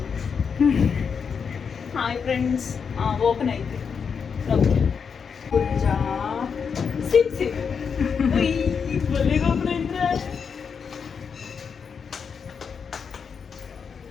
Hi friends. Open అయితే గుజ్జా సిప్ సిప్ భలేగా ఓపెన్ అయిందిరా.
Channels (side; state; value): right; quieter; 6.3 dB